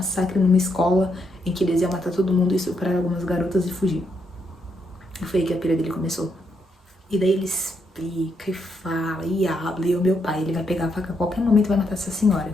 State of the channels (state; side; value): normal; both; correlation 0.78